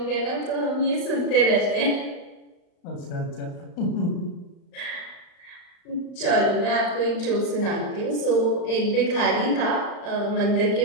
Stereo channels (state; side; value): late; right; 35 ms